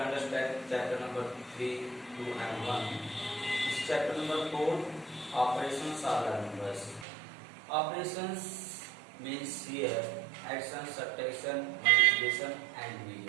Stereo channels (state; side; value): drops out; left; at 7.1 s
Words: understand chapter number 3, 2 and 1. This chapter number 4, operations on large numbers. Operations means here addition, subtraction, multiplication and